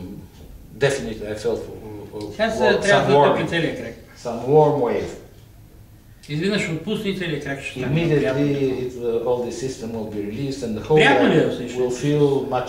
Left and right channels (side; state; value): both; identical; correlation 1.00